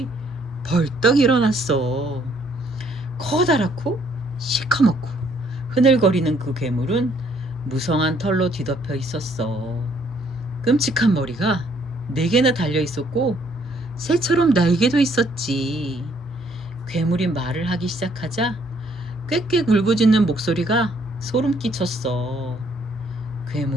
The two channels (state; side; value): normal; both; correlation 0.66